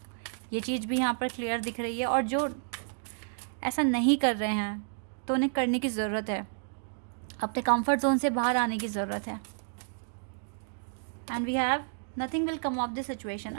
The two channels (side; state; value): left; silent; digital silence